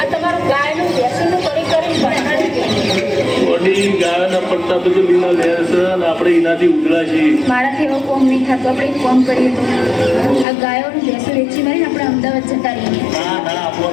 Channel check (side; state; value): right; drops out; at 10.5 s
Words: વડી ગાયના પટ્ટા બધું લીલા લેર છે અને આપણે એનાથી ઉઘડા છીએ. મારાથી એવો કોમ નહીં થતો. આપણે એક કોમ કરીએ તો આ ગાયોનું ભેંસો વેચી મારીને આપણે અમદાવાદ જતા રહીએ. ના ના આપણો